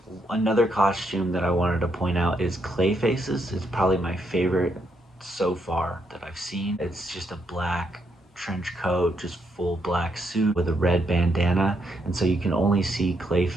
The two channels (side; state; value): both; normal; correlation 0.77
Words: Another costume that I wanted to point out is Clayface's. It's probably my favorite so far that I've seen. It's just a black trench coat, just full black suit with a red bandana, and so you can only see